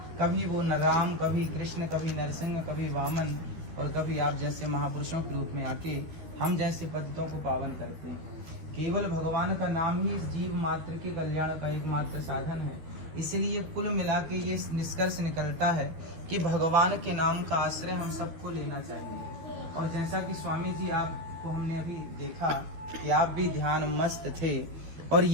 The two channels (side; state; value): left; late; 12 ms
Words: कभी वो न राम, कभी कृष्ण, कभी नरसिंह, कभी वामन, और कभी आप जैसे महापुरुषों के रूप में आके हम जैसे पतितों को पावन करते हैं। केवल भगवान का नाम ही इस जीव मात्र के कल्याण का एकमात्र साधन है। इसलिए कुल मिला के ये निष्कर्ष निकलता है कि भगवान के नाम का आश्रय हम सबको लेना चाहिए। और जैसा कि स्वामी जी आपको हमने अभी देखा कि आप भी ध्यान मस्त थे, और